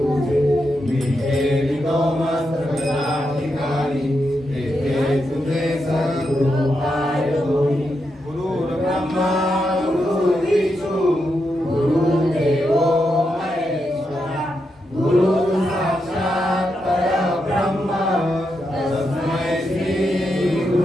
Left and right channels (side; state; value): both; normal; correlation 0.84